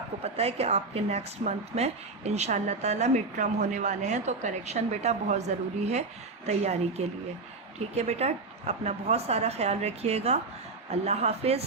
کو پتہ ہے کہ آپ کے نیکسٹ منتھ میں انشاءاللہ تعالیٰ مڈ ٹرم ہونے والے ہیں، تو کریکشن بیٹا بہت ضروری ہے تیاری کے لیے۔ ٹھیک ہے بیٹا، اپنا بہت سارا خیال رکھیے گا۔ اللہ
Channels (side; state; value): left; quieter; 3.8 dB